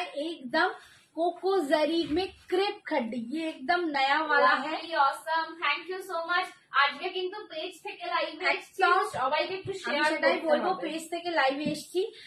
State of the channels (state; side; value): identical; both; correlation 1.00